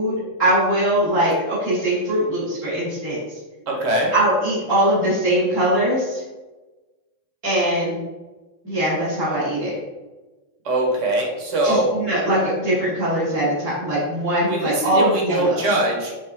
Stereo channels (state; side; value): late; left; 4.2 ms